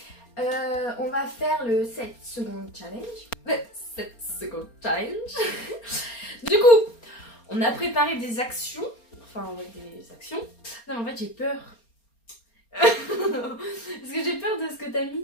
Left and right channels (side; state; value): right; late; 4.3 ms